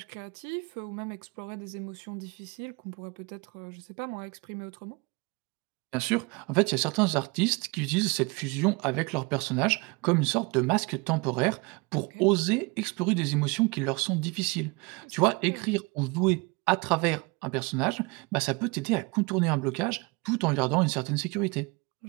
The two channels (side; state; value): left; quieter; 27.6 dB